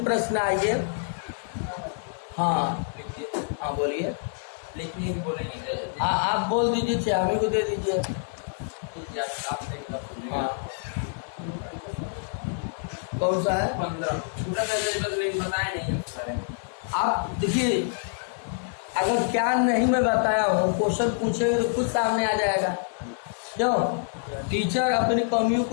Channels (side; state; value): right; silent; digital silence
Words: प्रश्न आइए। हाँ हाँ बोलिए। लिखिए बोलेंगे। आप बोल दीजिए, चाहे हमें को दे दीजिए। हाँ कौन सा है? 15 छोटा बस लेकिन बताया नहीं उस बारे में। आप देखिए, अगर क्या नहीं मैं बताया हूँ, क्वेश्चन पूछेंगे तो खुद सामने आ जाएगा। क्यों? टीचर अपनी कमियों